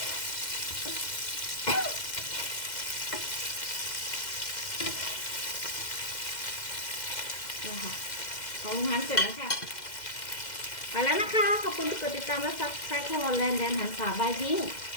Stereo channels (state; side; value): late; right; 2.1 ms